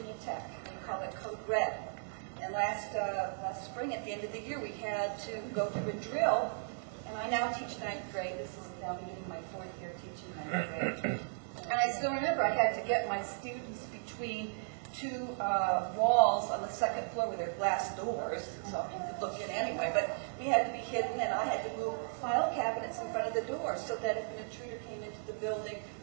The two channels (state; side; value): silent; left; digital silence